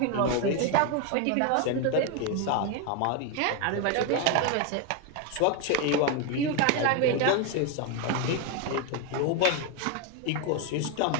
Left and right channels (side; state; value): both; different; correlation 0.02